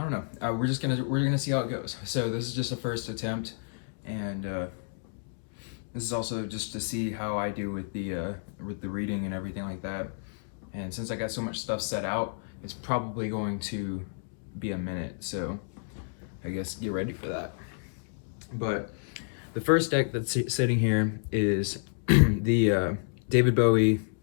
know, we're gonna see how it goes. So this is just a first attempt, and this is also just to see how I do with the reading and everything like that. And since I got so much stuff set out, it's probably going to be a minute, so I guess get ready for that. But the first deck that's sitting here is the David Bowie,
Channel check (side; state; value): right; silent; digital silence